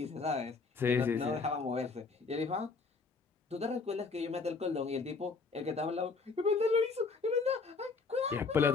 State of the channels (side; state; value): right; quieter; 4.5 dB